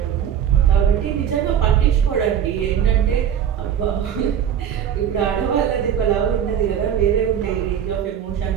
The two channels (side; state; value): left; quieter; 9.1 dB